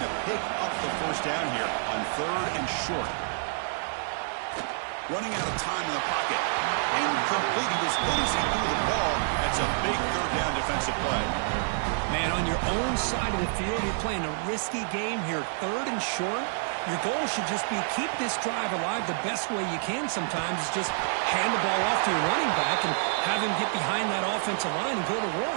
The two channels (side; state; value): left; silent; digital silence